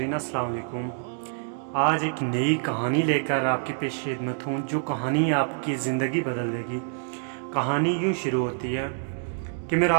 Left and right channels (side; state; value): left; silent; digital silence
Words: अस्सलाम वालेकुम। आज एक नई कहानी लेकर आपकी पेश खिदमत हूँ, जो कहानी आपकी ज़िंदगी बदल देगी। कहानी यूँ शुरू होती है कि मैं